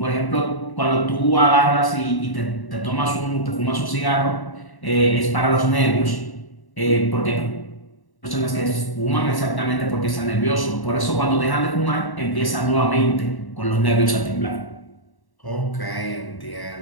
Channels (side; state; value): right; late; 1.1 ms